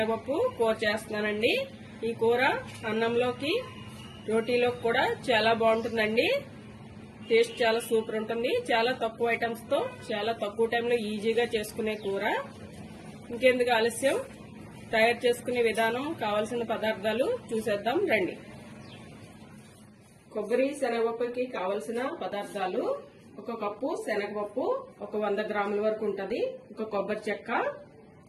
కూర చేస్తున్నానండి. ఈ కూర అన్నంలోకి రోటీలోకి కూడా చాలా బాగుంటుందండి. టేస్ట్ చాలా సూపర్ ఉంటుంది. చాలా తక్కువ ఐటమ్స్ తో చాలా తక్కువ టైంలో ఈజీగా చేసుకునే కూర. ఇంకెందుకు ఆలస్యం, తయారు చేసుకునే విధానం, కావలసిన పదార్థాలు చూసేద్దాం రండి. కొబ్బరి శనగపప్పుకి కావలసిన పదార్థాలు: ఒక కప్పు శనగపప్పు, ఒక 100 గ్రాముల వరకు ఉంటుంది, ఒక కొబ్బరి చెక్క,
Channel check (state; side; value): identical; both; correlation 1.00